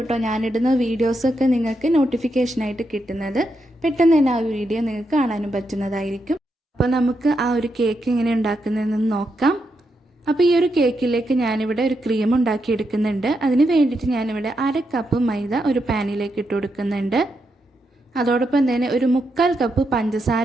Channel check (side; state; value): both; normal; correlation 0.83